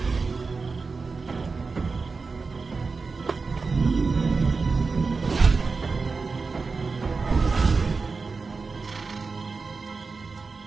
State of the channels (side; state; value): left; quieter; 4.4 dB